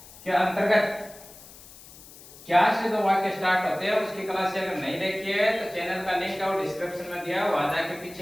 अंतर्गत क्या से जो वाक्य स्टार्ट होते हैं उसकी क्लास से अगर नहीं देखी है तो चैनल का लिंक है वो डिस्क्रिप्शन में दिया है, वहां जाके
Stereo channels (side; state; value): left; noise; hiss, 19 dB below the sound